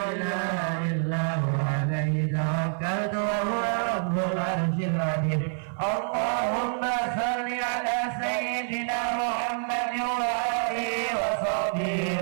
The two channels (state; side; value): silent; left; 56 dB below the other